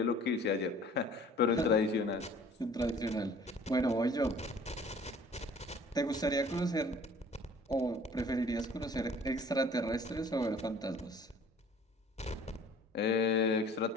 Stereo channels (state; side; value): normal; both; correlation 0.51